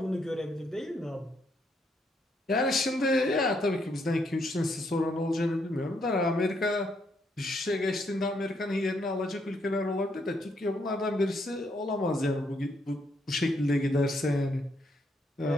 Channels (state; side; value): normal; both; correlation 0.75